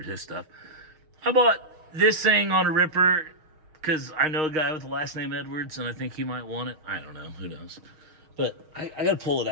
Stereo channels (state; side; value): late; left; 6.4 ms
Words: his stuff. I bought this thing on a ripper because I know a guy with the last name Edwards, and I think he might want it. I don't know. Who knows? But I got to pull it